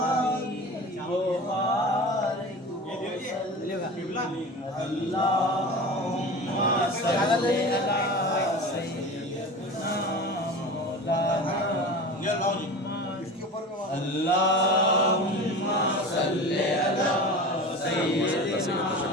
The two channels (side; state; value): both; normal; correlation 0.33